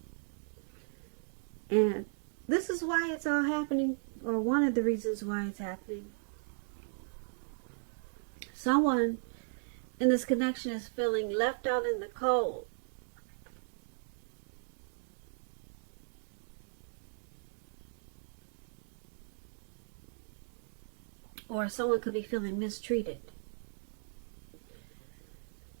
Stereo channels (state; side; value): silent; left; digital silence